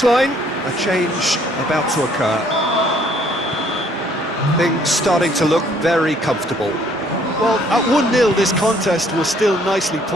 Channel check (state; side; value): normal; both; correlation 0.63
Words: a change about to occur. Things starting to look very comfortable. Well, at 1-0 this contest was still nicely